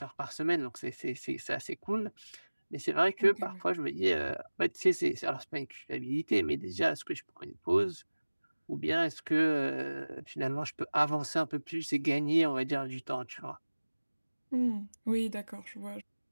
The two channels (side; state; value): both; inverted; correlation -1.00